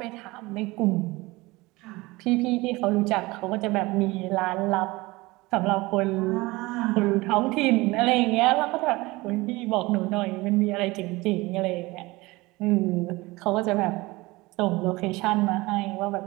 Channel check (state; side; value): quieter; left; 21.7 dB